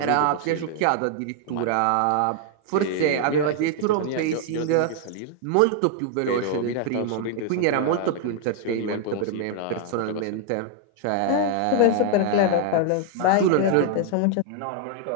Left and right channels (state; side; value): different; both; correlation 0.00